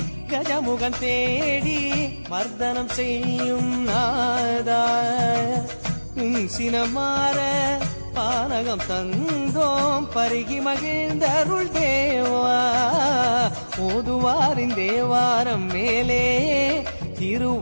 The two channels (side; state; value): both; inverted; correlation -1.00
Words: கஜமுகன் தேடி மர்தனம் செய்யும் நாதா, சினமாற பானகம் தந்தோம் பருகி மகிழ்ந்தருள் தேவா, ஓதுவாரின் தேவாரம் மேலே திரு